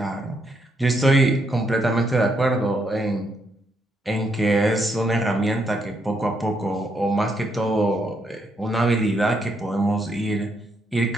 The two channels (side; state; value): both; normal; correlation 0.76